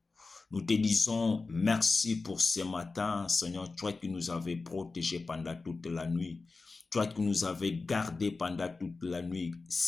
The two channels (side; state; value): right; quieter; 3.9 dB